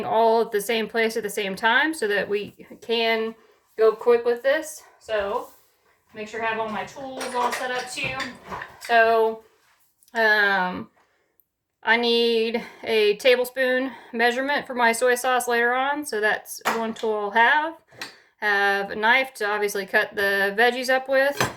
all at the same place at the same time so that we can go quick with this. So make sure I have all my tools all set up too. So I need a tablespoon measurement for my soy sauce later on, so that's one tool I'll have. Have a knife to obviously cut the veggies up with.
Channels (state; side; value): identical; both; correlation 1.00